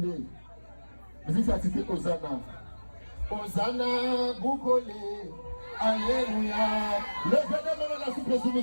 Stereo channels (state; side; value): inverted; both; correlation -1.00